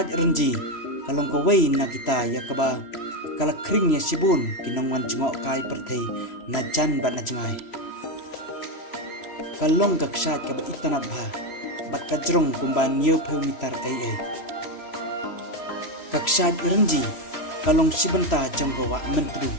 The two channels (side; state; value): right; late; 3.0 ms